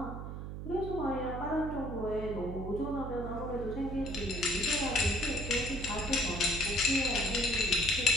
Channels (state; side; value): noise; right; hum, 7 dB below the sound